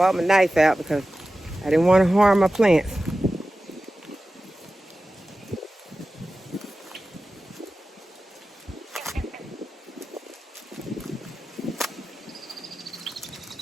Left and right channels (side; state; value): both; normal; correlation 0.94